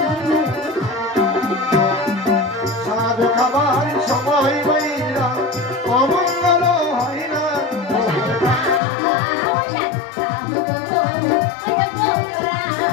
সাধ খাবার সময় বাইরা অমঙ্গল হয় না।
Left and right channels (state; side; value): drops out; right; at 8.8 s